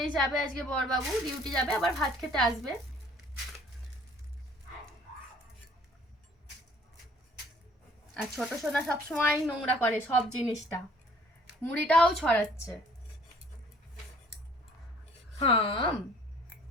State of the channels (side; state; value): both; normal; correlation 0.56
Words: যাবে আজকে বরবাবু। ডিউটি যাবে, আবার ভাত খেতে আসবে। আর ছোট সোনা সবসময় নোংরা করে সব জিনিসটা, মুড়িটাও ছড়াচ্ছে। হাম